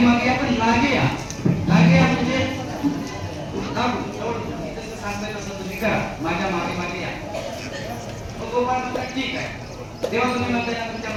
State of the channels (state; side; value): identical; both; correlation 1.00